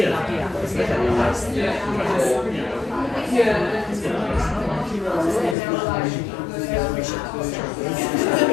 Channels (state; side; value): drops out; right; at 5.6 s